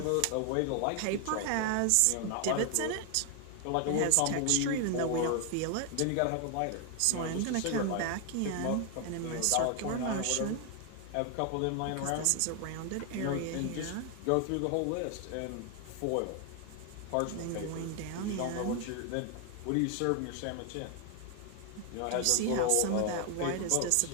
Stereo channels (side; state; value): both; different; correlation 0.00